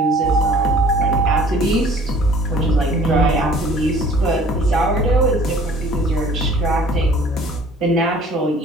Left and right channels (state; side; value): normal; both; correlation 0.51